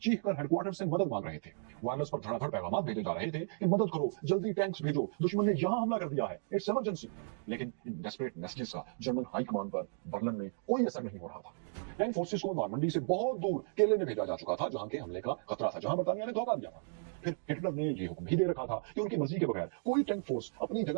चीख कर हेडक्वार्टर से मदद मांग रहे थे। वायरलेस पर धड़ाधड़ पैगाम भेजे जा रहे थे कि मदद करो, जल्दी टैंक्स भेजो, दुश्मन ने यहां हमला कर दिया है, इट्स इमरजेंसी। लेकिन इन डेस्परेट मैसेजेस का जर्मन हाई कमांड पर बर्लिन में कोई असर नहीं हो रहा था। टैंक फोर्सेस को नॉर्मंडी से बहुत दूर केले में भेजा जा चुका था, जहां के हमले का खतरा था, जहां बरतानिया ने धोखा दिया था। फिर हिटलर ने ये हुक्म भी दे रखा था कि उनकी मर्जी के बगैर कोई टैंक फोर्स अपनी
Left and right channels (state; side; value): silent; left; digital silence